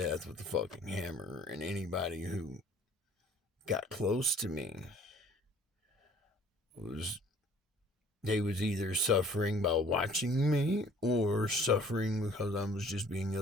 with the fucking hammer, and anybody who got close to me they was either suffering by watching me or suffering because I was just being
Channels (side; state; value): both; normal; correlation 0.53